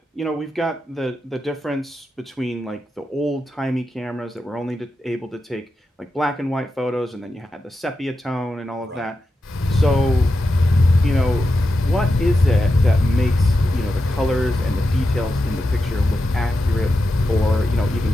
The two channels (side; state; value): both; normal; correlation 0.88